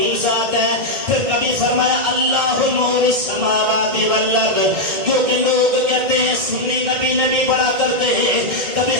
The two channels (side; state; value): left; late; 1.6 ms